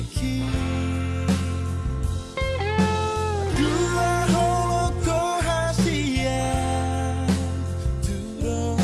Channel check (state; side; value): identical; both; correlation 1.00